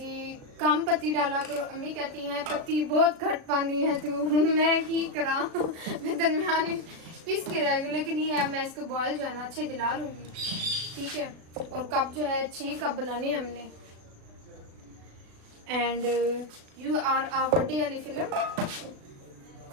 कम पत्ती डाला करो, अम्मी कहती हैं पत्ती बहुत घट पानी है तू। मैं की करा, मैं दरमियान पीस के रह गई। लेकिन ये है मैं इसको बॉयल जो है ना अच्छे दिला लूंगी। ठीक है, और कप जो है 6 कप बनाने हैं हमने। And you are a birthday वाली फिल्म।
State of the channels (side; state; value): left; late; 36 ms